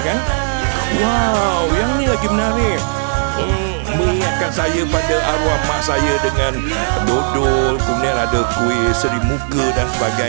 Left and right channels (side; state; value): left; silent; digital silence